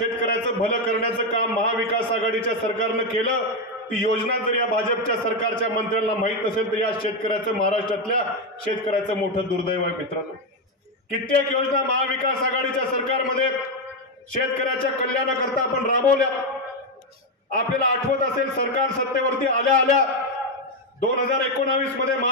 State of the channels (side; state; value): both; normal; correlation 0.07